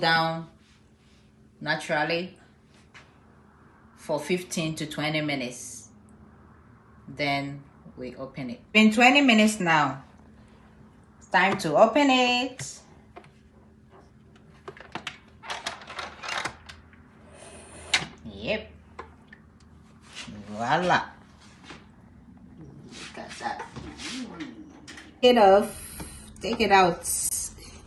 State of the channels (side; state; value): both; identical; correlation 1.00